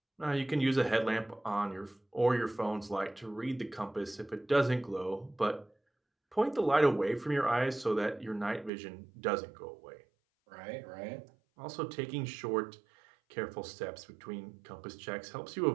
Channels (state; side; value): drops out; left; at 8.7 s